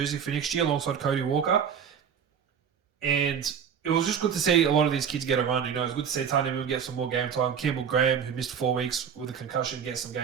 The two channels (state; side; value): quieter; left; 7.6 dB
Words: for next year alongside Cody Walker. And it was just good to see a lot of these kids get a run. It was good to see Tanya Moon get some more game time. Campbell Graham, who missed 4 weeks with a concussion, get some